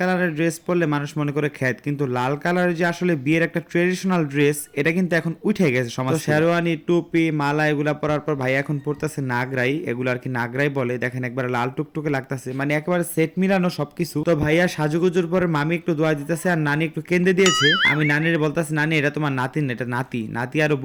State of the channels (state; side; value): identical; both; correlation 1.00